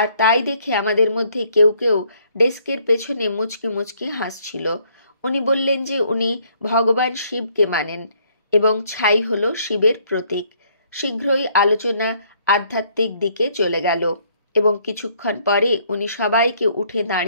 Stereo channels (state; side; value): inverted; both; correlation -0.66